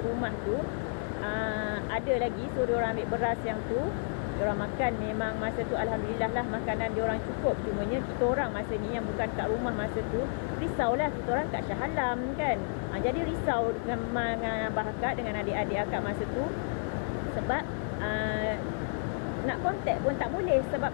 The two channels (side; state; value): right; silent; digital silence